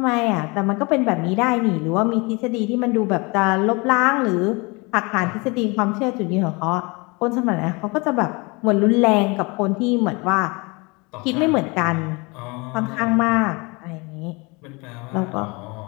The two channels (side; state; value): right; quieter; 27.4 dB